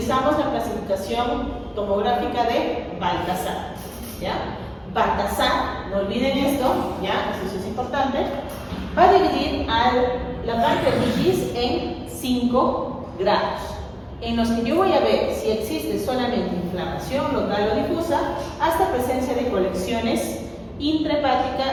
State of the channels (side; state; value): both; identical; correlation 1.00